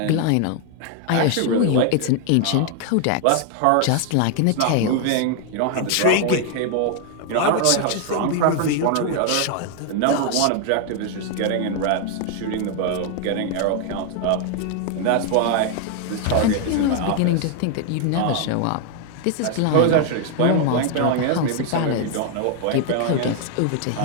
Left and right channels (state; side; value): different; both; correlation 0.00